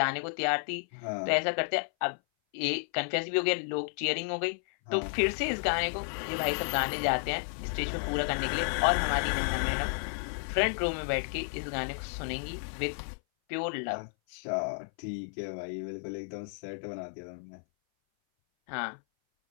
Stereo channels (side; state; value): right; silent; 57 dB below the other